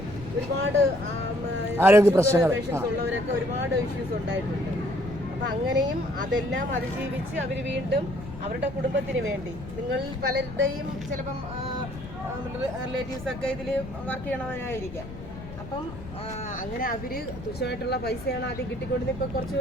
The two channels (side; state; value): left; noise; rumble, 12 dB below the sound